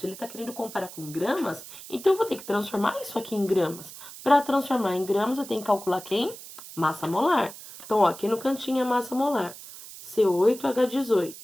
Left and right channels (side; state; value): right; noise; hiss, 15 dB below the sound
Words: ele está querendo comparar com gramas, então eu vou ter que transformar isso aqui em gramas. Para transformar em gramas, eu tenho que calcular quem? Massa molar. Então, ó, aqui no cantinho é massa molar.